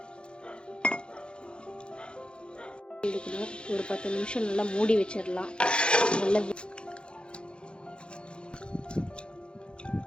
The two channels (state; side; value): late; right; 0.054 ms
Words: ஒரு 10 நிமிஷம் நல்லா மூடி வச்சிடலாம். நல்லா